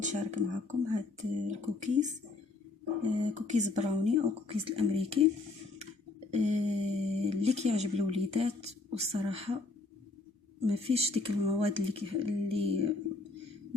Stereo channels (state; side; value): quieter; right; 3.6 dB